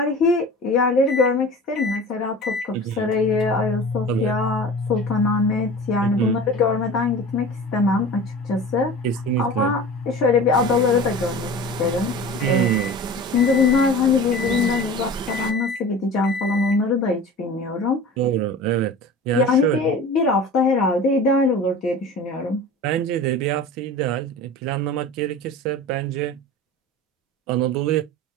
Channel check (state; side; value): normal; both; correlation 0.37